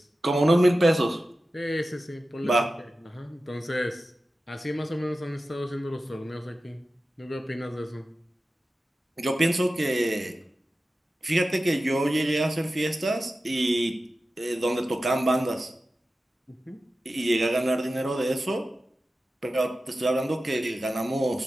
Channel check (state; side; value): normal; both; correlation 0.94